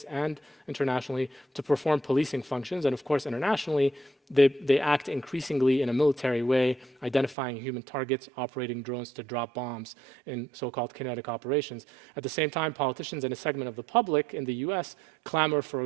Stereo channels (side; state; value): left; drops out; at 7.4 s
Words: and internationally to perform policing functions, and of course internationally, they act increasingly in a military way, identifying human targets, operating drones to drop bombs in so-called kinetic operations. At the same time, politicians and a segment of the public in the US clamor for